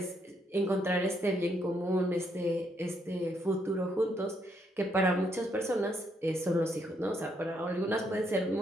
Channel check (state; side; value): normal; both; correlation 0.74